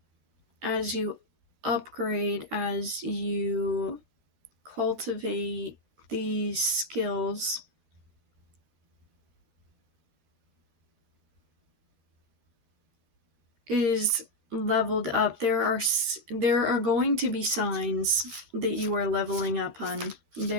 as you upgrade, as you cultivate these skills, is leveled up. There are going to be signs that you are leveling up on.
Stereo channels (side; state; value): left; late; 12 ms